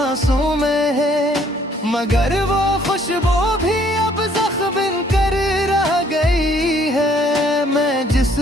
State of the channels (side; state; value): both; normal; correlation 0.63